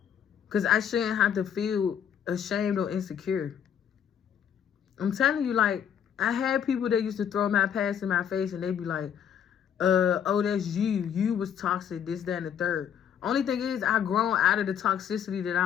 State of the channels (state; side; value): quieter; right; 8.8 dB